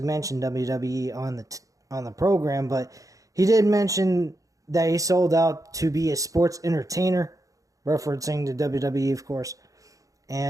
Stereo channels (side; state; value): left; late; 0.16 ms